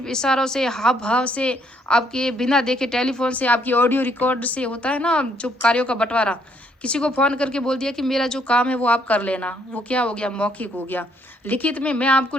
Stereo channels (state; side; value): normal; both; correlation 0.69